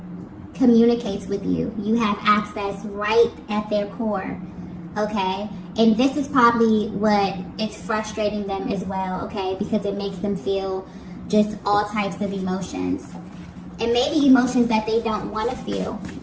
communicates with you. You have access right at their core, okay? And this is probably what is frustrating them as well, okay? Because it makes them feel just all types of emotions. And maybe emotions that they don't want to feel,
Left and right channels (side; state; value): both; identical; correlation 1.00